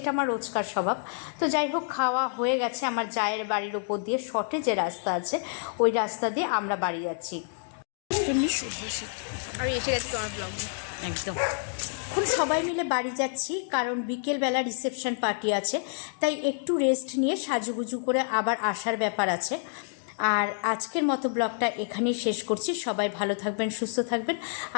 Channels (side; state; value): right; silent; digital silence